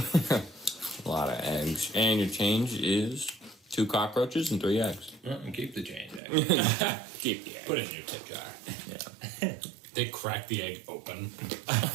a lot of eggs. And your change is 2 cockroaches and 3 eggs. And keep the change. Keep the egg. Put it in your tip jar. Yeah. They crack the egg open.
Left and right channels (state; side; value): drops out; left; at 6.2 s